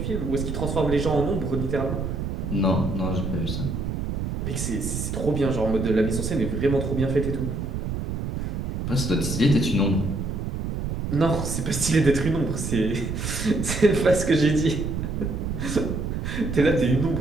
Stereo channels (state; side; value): noise; right; rumble, 3 dB below the sound